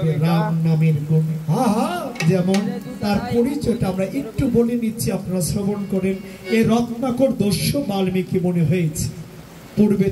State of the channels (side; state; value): both; identical; correlation 1.00